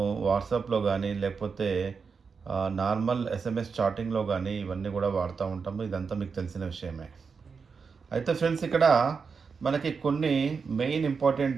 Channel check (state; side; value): quieter; left; 5.4 dB